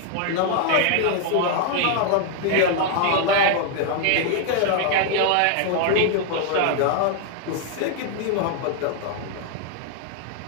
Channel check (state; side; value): different; both; correlation 0.00